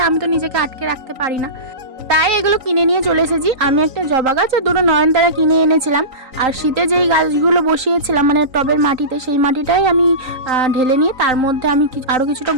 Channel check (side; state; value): left; late; 3.9 ms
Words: আমি তো নিজেকে আটকে রাখতে পারি না, তাই এগুলো কিনে নিয়ে চলে এসেছি। আমি একটা জবা গাছ আর দুটো নয়নতারা কিনে এনেছিলাম। আর শীতে যেই গাছগুলো বসিয়েছিলাম মানে টবের মাটিতে, সেই মাটিটাই আমি ঢেলে নিয়ে তার মধ্যে আমি আরও কিছুটা